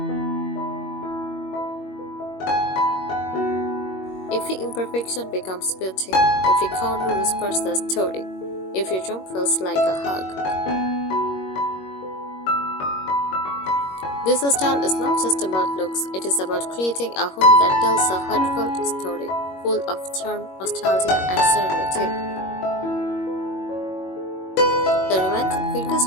Every imperfection becomes beauty, every corner whispers a story, every room feels like a hug. This style is not just about looks, it is about creating a home that tells a heartfelt story, full of charm, nostalgia, and serenity. The romantic vintage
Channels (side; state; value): right; late; 21 ms